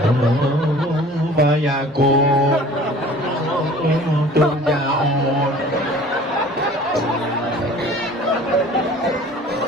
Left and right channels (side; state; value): both; normal; correlation 0.47